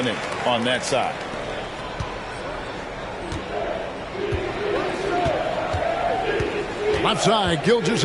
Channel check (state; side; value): identical; both; correlation 1.00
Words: on that side. Left side,